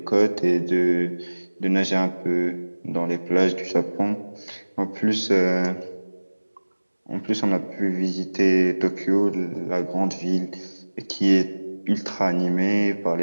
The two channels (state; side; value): inverted; both; correlation -1.00